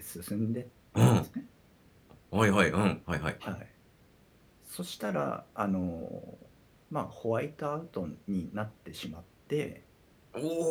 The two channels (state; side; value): identical; both; correlation 1.00